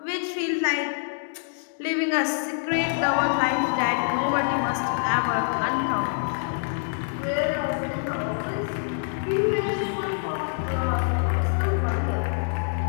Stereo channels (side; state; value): right; silent; digital silence